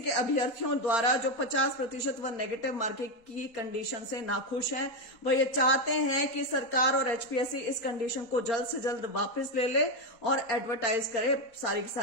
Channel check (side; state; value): right; late; 4.3 ms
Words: अभ्यर्थियों द्वारा जो 50% व नेगेटिव मार्किंग की कंडीशन से नाखुश हैं। वह ये चाहते हैं कि सरकार और एचपीएससी इस कंडीशन को जल्द से जल्द वापस ले ले और एडवर्टाइज करे सारी की